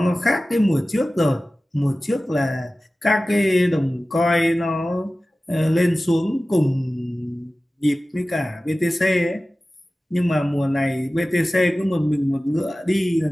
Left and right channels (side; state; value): both; normal; correlation 0.96